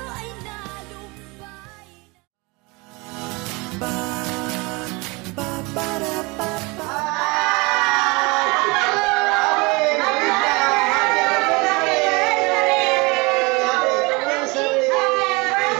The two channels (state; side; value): quieter; left; 26.3 dB